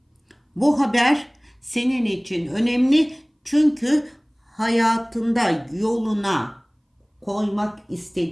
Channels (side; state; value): both; identical; correlation 1.00